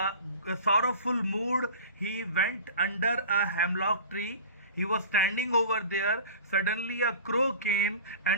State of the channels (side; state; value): both; inverted; correlation -0.38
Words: sorrowful mood, he went under a hemlock tree। He was standing over there. Suddenly a crow came